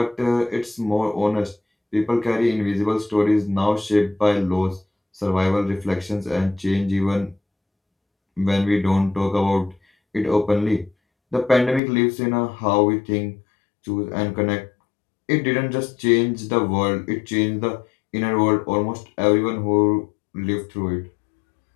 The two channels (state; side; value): drops out; right; at 11.8 s